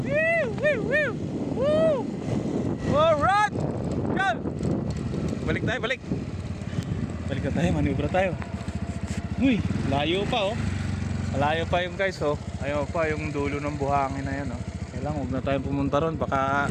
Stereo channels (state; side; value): identical; both; correlation 1.00